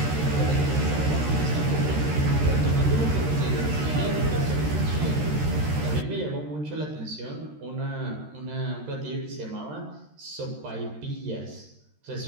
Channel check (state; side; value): late; left; 13 ms